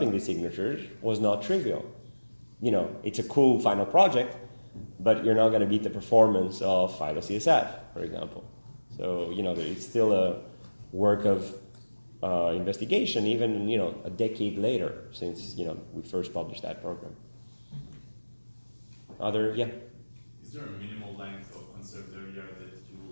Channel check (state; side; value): inverted; both; correlation -1.00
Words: these signatures was not trivial. It's a cool final project, but you're not going to beat the performance of Phylo-CSF, for example. So, it's still a work of investigation, even, a decade later since, we first published that program. Yeah? Is there a minimal length of conserved area that you